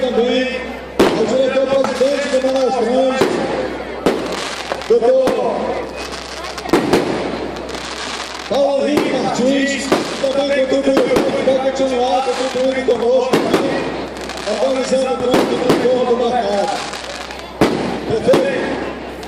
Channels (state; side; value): identical; both; correlation 1.00